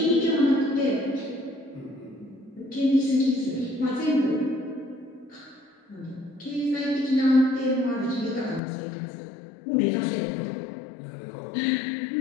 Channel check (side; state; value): right; drops out; at 8.6 s